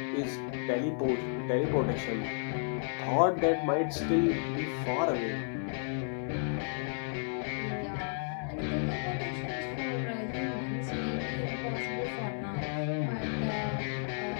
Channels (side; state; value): right; silent; 56 dB below the other